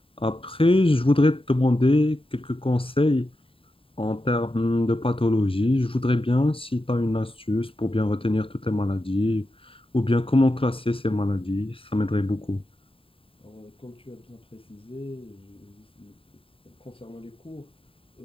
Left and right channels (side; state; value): right; late; 0.26 ms